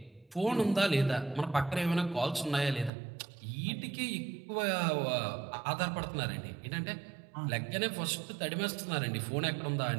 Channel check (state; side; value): drops out; left; at 2.9 s